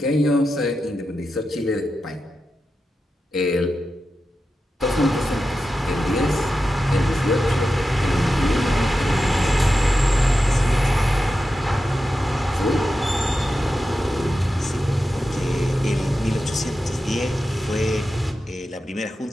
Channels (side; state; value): both; normal; correlation 0.91